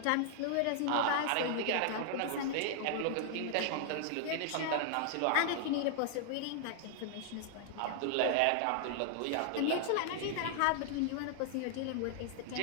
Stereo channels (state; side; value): different; both; correlation 0.00